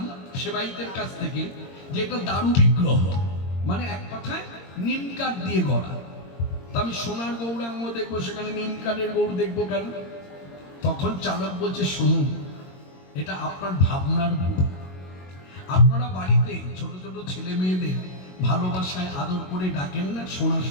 সেবাইতের কাছ থেকে যে এটা দারু বিগ্রহ, মানে এক কথায় নিম কাঠ দিয়ে গড়া। তা আমি সোনার গৌরাঙ্গ দেখবো, সেখানে নিম কাঠের গৌর দেখবো কেন? তখন চালক বলছে শুনুন, এটা আপনার ভাবনার ভুল। আপনারা বাড়িতে ছোট ছোট ছেলে মেয়েদের ভালোবাসায় আদর করে ডাকেন না সোনা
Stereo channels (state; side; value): late; right; 22 ms